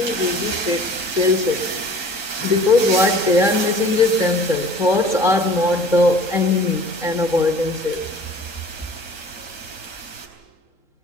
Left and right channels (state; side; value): late; left; 3.8 ms